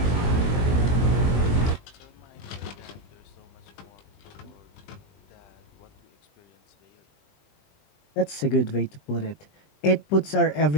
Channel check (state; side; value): late; right; 20 ms